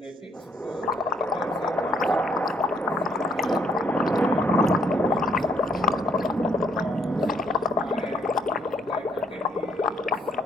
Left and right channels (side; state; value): both; normal; correlation 0.68